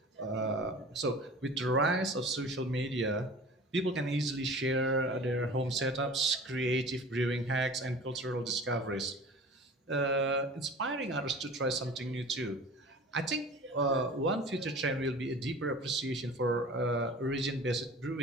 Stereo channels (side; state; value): both; normal; correlation 0.41